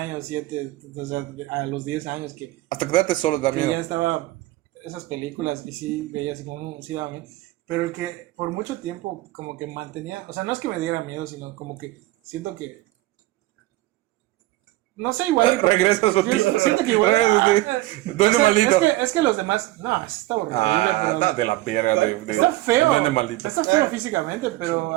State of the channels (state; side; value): quieter; left; 18.3 dB